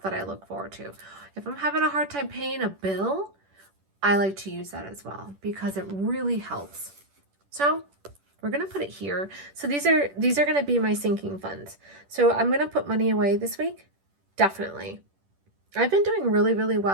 that I look forward to. If I'm having a hard time paying a bill, I like to use that as well because it really helps. So we're going to put it here. So these are going to be my sinking funds. So I'm going to put money away this week. Definitely. I've been doing really, really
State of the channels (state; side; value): late; left; 10 ms